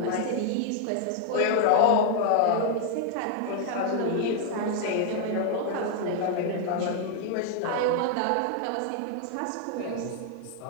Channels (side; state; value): both; different; correlation 0.00